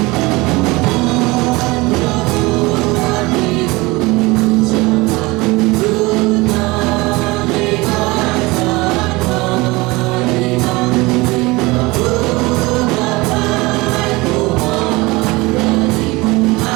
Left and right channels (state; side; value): quieter; left; 22.7 dB